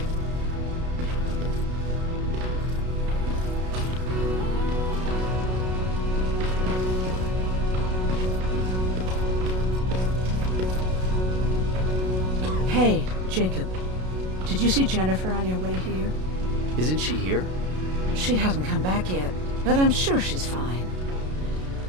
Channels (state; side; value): late; left; 32 ms